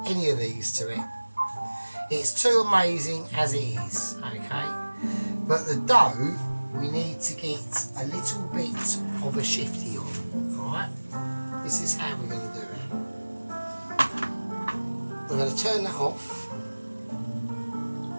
any of these to it. It's too amazing as it is, okay? But the dough, we need to get a little bit of a shifty on, alright? This is how we're going to do it. we're going to turn that off.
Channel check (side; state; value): both; inverted; correlation -1.00